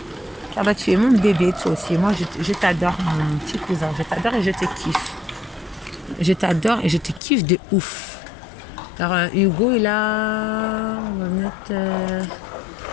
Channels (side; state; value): right; drops out; at 7.2 s